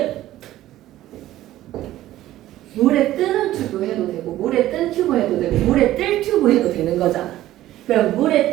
물에 뜨는 튜브 해도 되고 물에 뜬 튜브 해도 되고 물에 뜰 튜브 해도 되는 거잖아. 그럼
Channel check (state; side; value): quieter; left; 14.5 dB